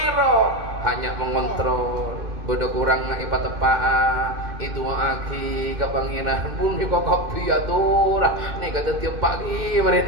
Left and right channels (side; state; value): left; late; 2.6 ms